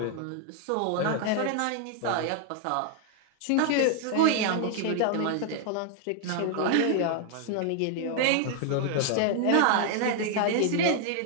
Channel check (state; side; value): different; both; correlation 0.00